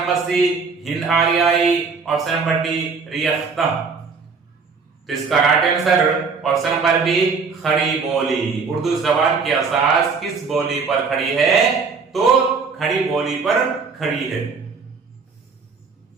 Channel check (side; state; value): left; quieter; 5.0 dB